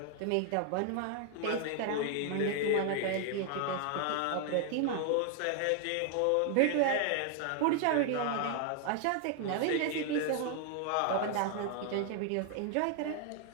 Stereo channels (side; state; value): both; different; correlation 0.00